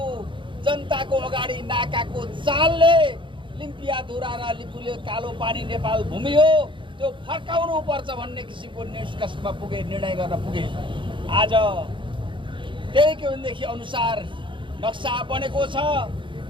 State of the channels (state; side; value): late; left; 0.24 ms